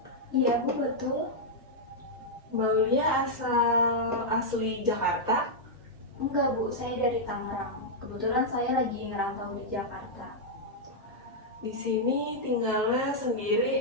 Iya Bu, betul. Mbak Aulia asli Jakarta? Enggak Bu, saya dari Tangerang. Kebetulan saya lagi ngerantau di Jakarta. Di sini tinggalnya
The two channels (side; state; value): both; normal; correlation -0.05